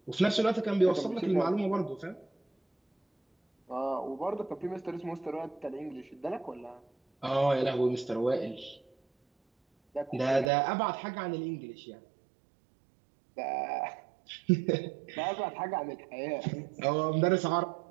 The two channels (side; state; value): left; drops out; at 10.5 s